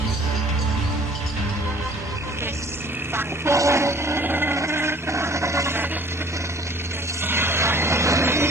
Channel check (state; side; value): normal; both; correlation 0.52